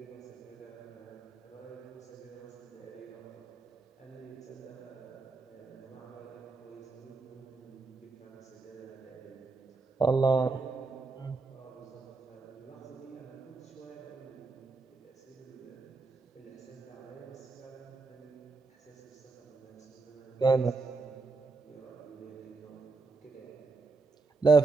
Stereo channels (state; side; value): quieter; left; 3.9 dB